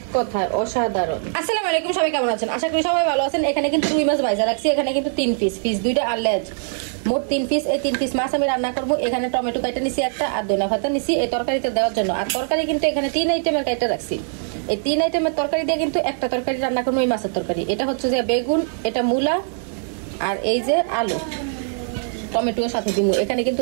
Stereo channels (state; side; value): silent; left; 64 dB below the other